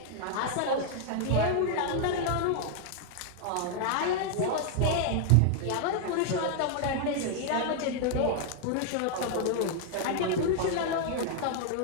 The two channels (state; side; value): different; both; correlation 0.00